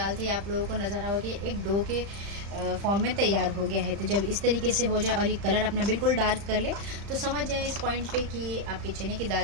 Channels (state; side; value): late; left; 35 ms